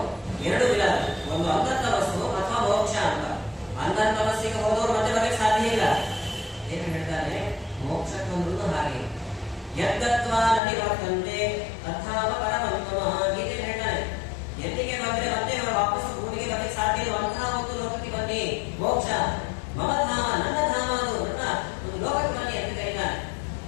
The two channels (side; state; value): right; drops out; at 10.6 s